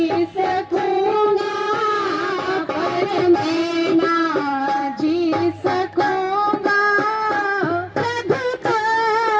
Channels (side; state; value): both; identical; correlation 1.00